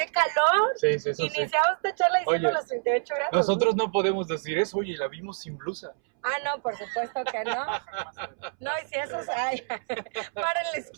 calor. Sí, eso Iniciamos esta charla diciendo los 38 grados. Nosotros no podemos decir eso, oye, la vimos sin blusa. No, por supuesto que no. No, y si eso hay, para en la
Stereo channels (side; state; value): left; silent; 60 dB below the other